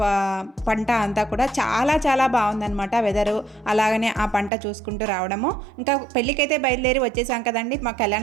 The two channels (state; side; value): drops out; left; at 4.5 s